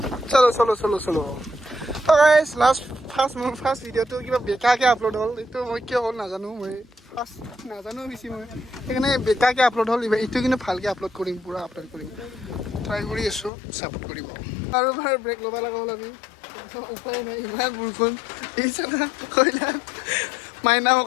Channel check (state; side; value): drops out; right; at 13.5 s